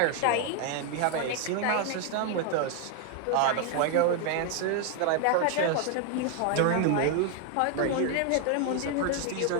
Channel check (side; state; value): both; different; correlation 0.00